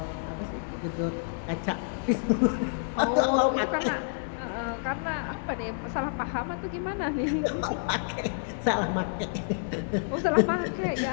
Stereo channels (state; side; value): silent; right; digital silence